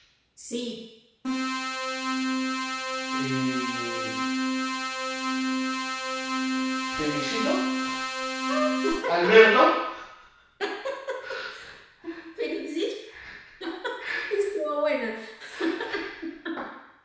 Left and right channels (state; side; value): identical; both; correlation 1.00